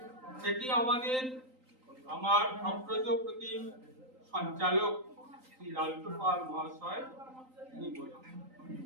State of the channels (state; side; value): late; left; 3.9 ms